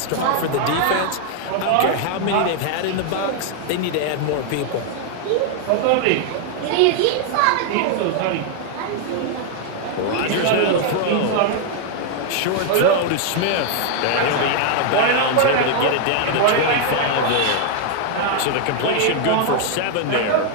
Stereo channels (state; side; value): different; both; correlation 0.00